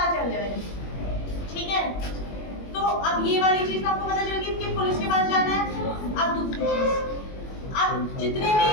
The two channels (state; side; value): late; right; 21 ms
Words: चल जाए। ठीक है, तो अब ये वाली चीज तो आपको पता चल गई कि पुलिस के पास जाना है। अब दूसरी चीज, अब जितने भी